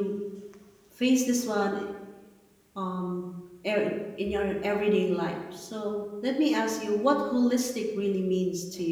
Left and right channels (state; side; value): identical; both; correlation 1.00